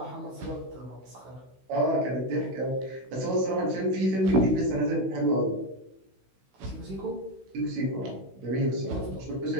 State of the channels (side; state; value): left; late; 16 ms